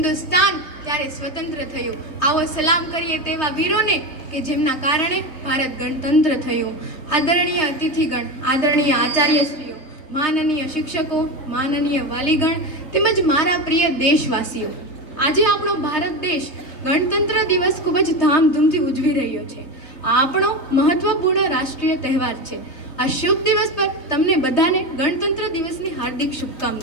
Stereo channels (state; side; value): late; right; 3.2 ms